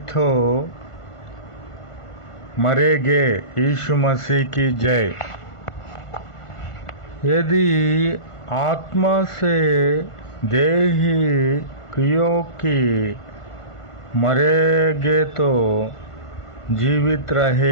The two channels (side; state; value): right; late; 1.5 ms